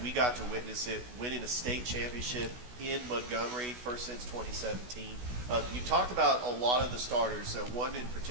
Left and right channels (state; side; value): late; left; 16 ms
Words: We got to witness it, winning a state championship in Montgomery, first since 2017. You talked about a lot of the starters. One in